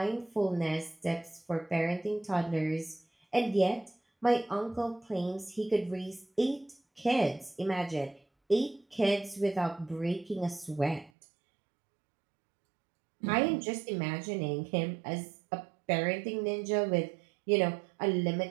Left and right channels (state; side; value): drops out; left; at 11.1 s